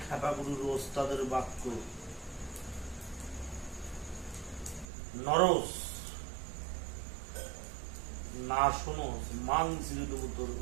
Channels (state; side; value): drops out; left; at 4.9 s